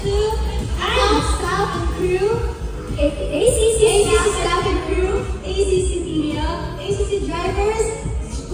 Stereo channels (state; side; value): identical; both; correlation 1.00